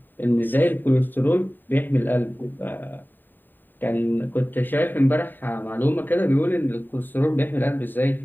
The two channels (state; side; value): late; right; 0.091 ms